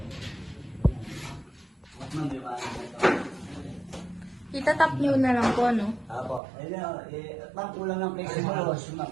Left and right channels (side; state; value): left; drops out; at 6.4 s